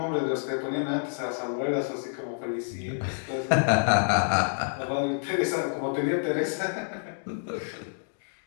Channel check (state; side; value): silent; right; digital silence